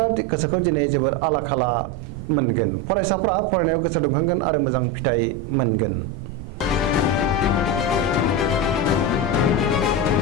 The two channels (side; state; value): right; noise; rumble, 12 dB below the sound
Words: गोसोखौ दिनै जोबोर आला खाला मोनगोन। फरायसाफ्रा फरायनायाव गोसो दुंखांगोन आरो मोजां फिथाइ मोनगोन।